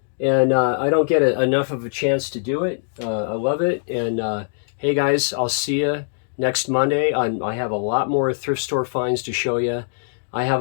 And I don't get enough of a chance to do it. I love it. And hey, guys, I'll see you next Monday. I have a lot more thrift store finds to show you. I have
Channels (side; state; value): right; silent; digital silence